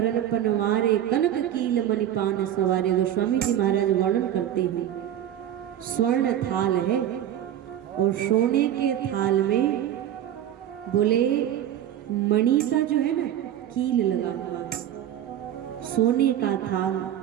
पनवारे, कनक कील मणिपान सवारे। गोस्वामी जी महाराज वर्णन करते हैं, स्वर्ण थाल है और सोने के थाल में बोले मणि का जो है ना कील लगा हुआ है, सोने का थाल,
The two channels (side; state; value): left; quieter; 11.0 dB